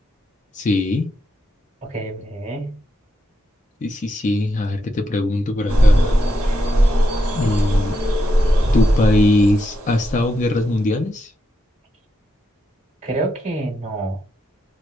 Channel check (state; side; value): normal; both; correlation 0.83